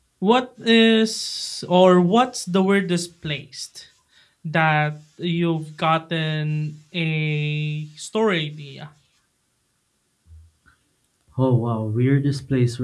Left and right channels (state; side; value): identical; both; correlation 1.00